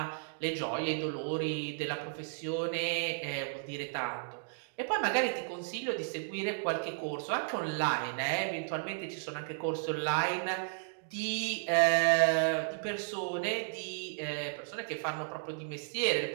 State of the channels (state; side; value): silent; left; digital silence